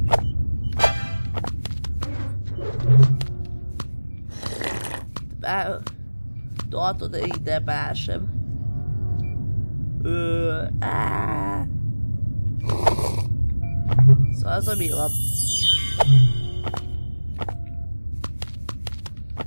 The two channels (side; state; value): both; inverted; correlation -1.00